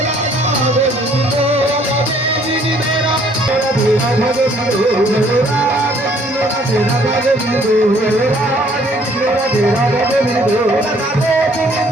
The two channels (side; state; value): both; normal; correlation 0.61